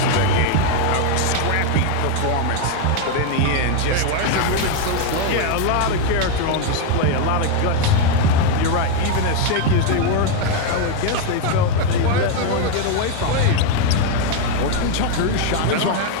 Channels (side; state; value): both; different; correlation 0.01